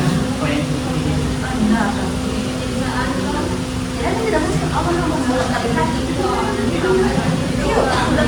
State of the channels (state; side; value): identical; both; correlation 1.00